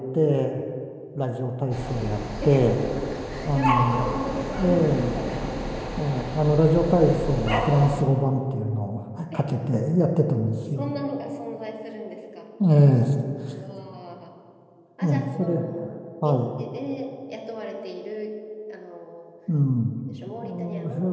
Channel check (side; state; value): both; identical; correlation 1.00